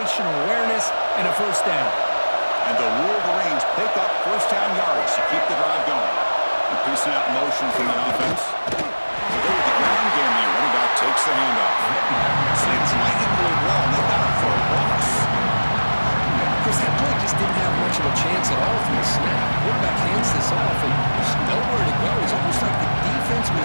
awareness and a first down. And the Wolverines pick up first down yards to keep the drive going. Increasing out motion from the offense. They go with the ground game here. Running back takes the handoff. Slings right into the wall, and they got it for a loss. Chris, that play just didn't have much of a chance at all from the snap. Quarterback hands this off, and there's nowhere to go. It's almost like the defense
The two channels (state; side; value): inverted; both; correlation -1.00